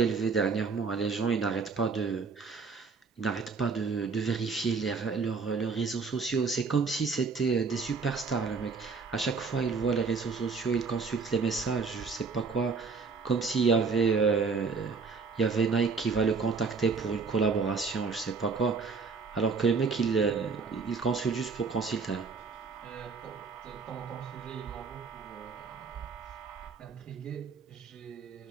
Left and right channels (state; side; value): quieter; left; 4.8 dB